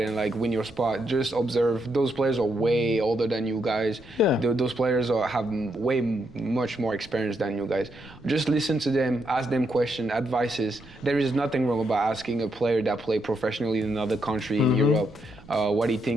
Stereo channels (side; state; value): right; noise; rumble, 23 dB below the sound